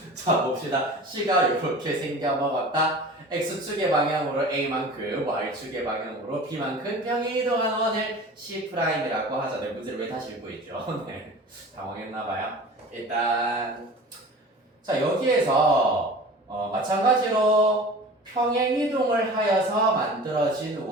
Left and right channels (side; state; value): both; normal; correlation 0.39